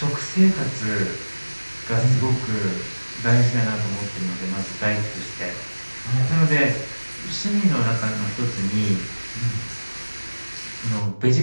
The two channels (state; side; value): inverted; both; correlation -1.00